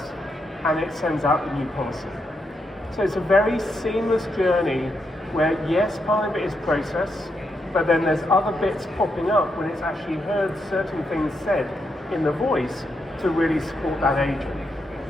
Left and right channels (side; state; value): both; normal; correlation 0.81